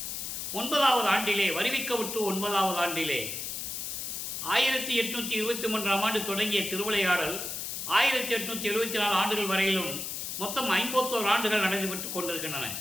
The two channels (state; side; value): noise; left; hiss, 5 dB below the sound